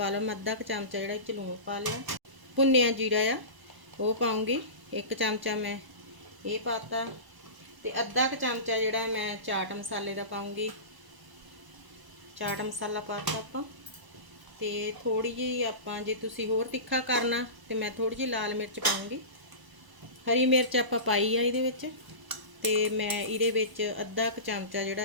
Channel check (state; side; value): late; left; 1.0 ms